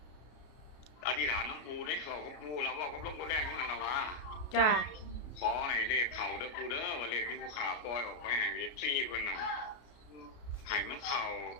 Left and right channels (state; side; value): late; right; 33 ms